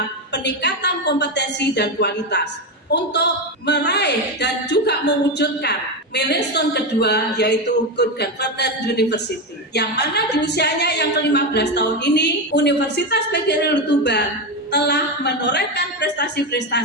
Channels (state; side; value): normal; both; correlation 0.13